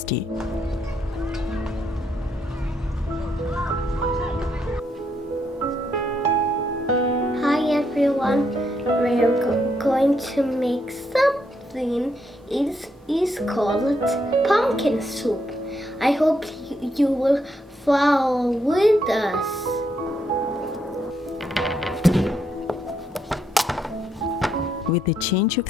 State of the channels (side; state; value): both; normal; correlation 0.77